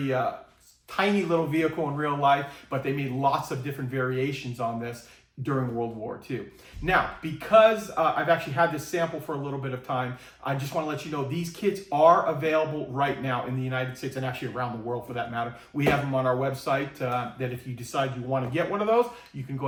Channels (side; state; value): both; identical; correlation 1.00